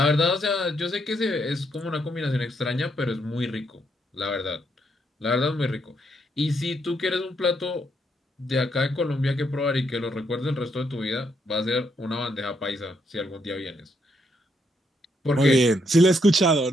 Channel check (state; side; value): normal; both; correlation 0.75